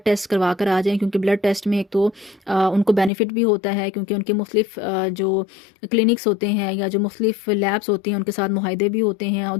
टेस्ट करवा कर आ जाएं, क्योंकि ब्लड टेस्ट में एक तो उनको बेनिफिट भी होता है क्योंकि उनके मुख्तलिफ जो क्लिनिक्स होते हैं या जो मुख्तलिफ लैब्स होती हैं उनके साथ मुहाइदे भी होते हैं। और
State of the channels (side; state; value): right; drops out; at 3.1 s